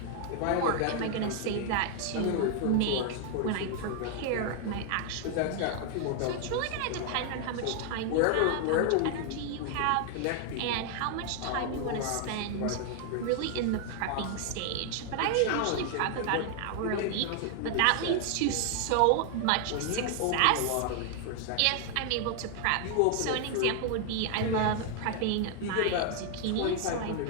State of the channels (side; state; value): both; different; correlation 0.00